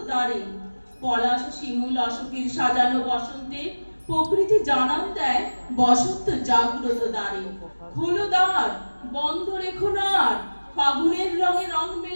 দ্বারে পলাশ শিমুল অশোকের সাজানো বসন্তে প্রকৃতি জানান দেয় বসন্ত জাগ্রত দ্বারে। খোলো দ্বার, বন্ধ রেখো না আর, ফাগুনের রঙে রং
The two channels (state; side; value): inverted; both; correlation -1.00